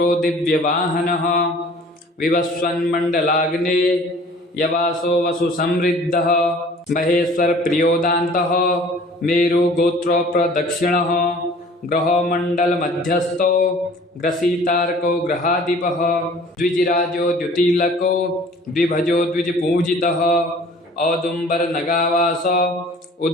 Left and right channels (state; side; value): normal; both; correlation 0.49